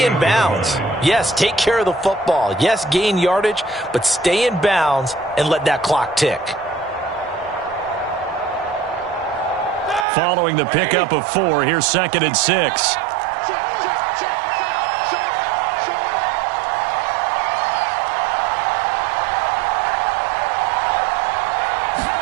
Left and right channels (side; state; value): left; drops out; at 10.1 s